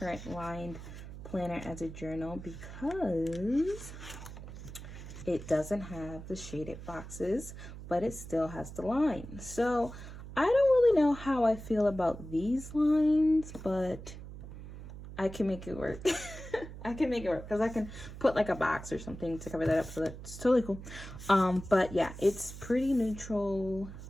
lined planner as a journal because it doesn't have the shaded boxes, but it still has the lines. So I don't really know how I feel about these lines, but I can make it work. I can make it work because I can put like a box or something to cover that up, so that's totally cool. But yeah, it's pretty neutral,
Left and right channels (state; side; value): noise; right; hum, 12 dB below the sound